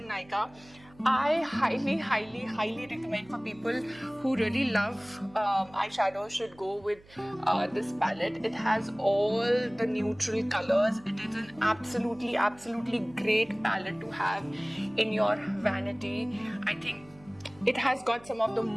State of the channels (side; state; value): right; noise; hum, 25 dB below the sound